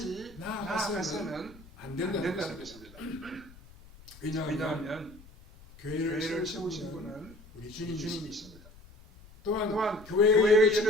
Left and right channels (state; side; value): noise; left; rumble, 22 dB below the sound